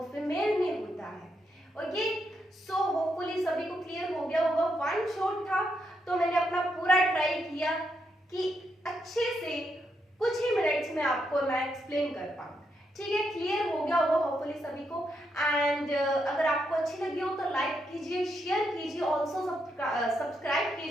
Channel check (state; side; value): normal; both; correlation 0.80